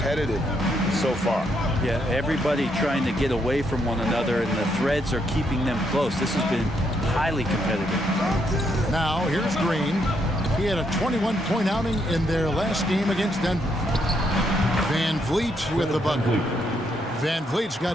so far. Yeah, everybody trying to get away from one another, and the threads are keeping them close. This has been highly competitive. Now, here's Green. He had a 21-point outing in their last game against Denver. Van Vliet with the bucket. Van Vliet's got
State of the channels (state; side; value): normal; both; correlation 0.76